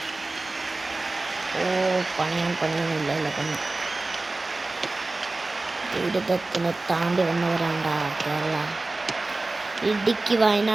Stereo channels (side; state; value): left; quieter; 3.2 dB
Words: പണിയൊന്നുമില്ല. ദുരിതത്തിന് താണ്ടി വന്നവരാണ്ടാ കേരള. ഇടുക്കി,